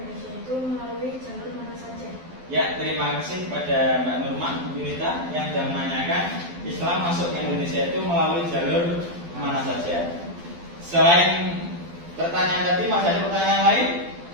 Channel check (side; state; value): left; late; 12 ms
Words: itu melalui jalur mana saja? Ya, terima kasih pada Mbak Nurman, Bu Yunita yang sudah menanyakan Islam masuk ke Indonesia itu melalui jalur mana saja. Selain pertanyaan tadi, masih ada pertanyaan lain?